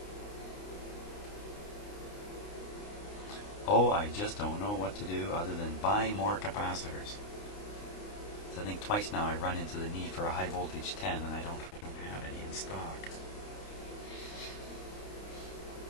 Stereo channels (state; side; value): late; right; 29 ms